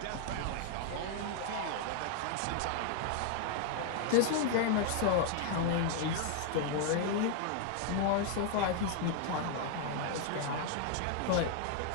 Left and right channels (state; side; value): different; both; correlation 0.00